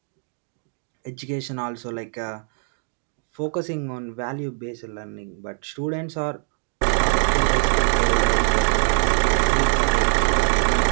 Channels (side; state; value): left; silent; 64 dB below the other